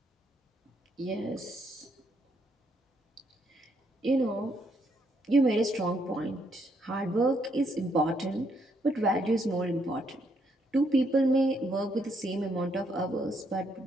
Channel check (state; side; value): normal; both; correlation 0.74